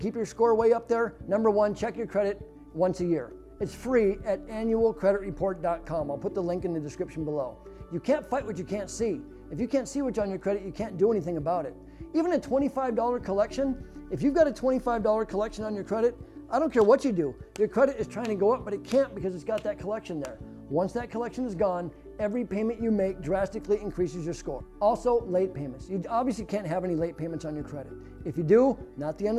your score way up there. Number one, check your credit once a year. It's free at annualcreditreport.com. I'll put the link in the description below. You can't fight what you can't see. If you can't see what's on your credit, you can't do anything about it. Even a $25 collection, if you've got a $25 collection on your credit, I don't care what you do. Your credit is trying to go up, but it can't because it's got that collection there. Once that collection is gone, every payment you make drastically increases your score. Also, late payments. You obviously can't have any late payments on your credit. If you do, not the end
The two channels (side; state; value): both; identical; correlation 1.00